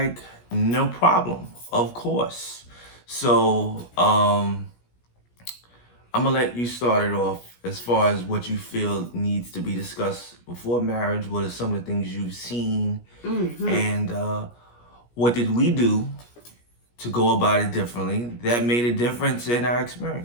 no problem, of course. So I'm gonna let you start it off as far as what you feel needs to be discussed before marriage. What are some of the things you've seen, and what did we do to go about it differently that made a difference in our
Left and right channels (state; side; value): late; right; 17 ms